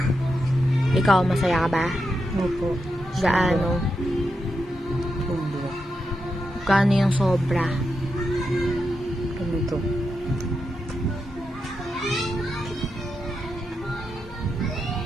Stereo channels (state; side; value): normal; both; correlation 0.86